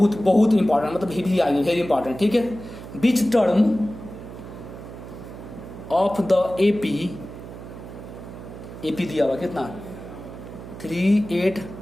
इंपॉर्टेंट, मतलब भी आएंगे, वेरी इंपॉर्टेंट। ठीक है, बीच टर्म ऑफ द एपी दिया हुआ कितना 3 8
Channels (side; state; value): right; noise; hum, 13 dB below the sound